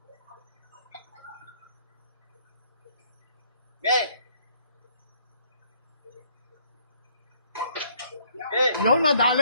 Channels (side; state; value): both; inverted; correlation -0.65